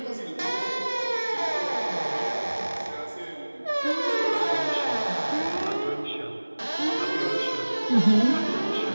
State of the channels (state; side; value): inverted; both; correlation -1.00